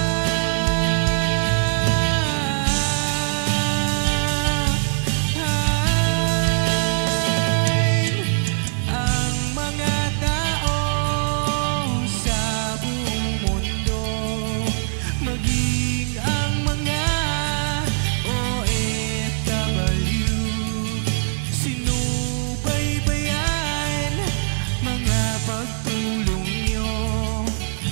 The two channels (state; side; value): silent; left; 64 dB below the other